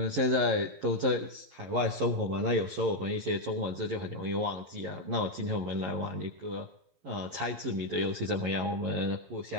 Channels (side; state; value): left; late; 11 ms